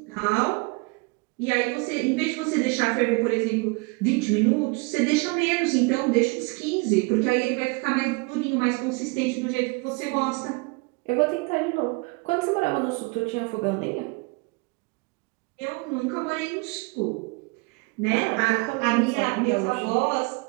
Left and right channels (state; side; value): quieter; left; 29.0 dB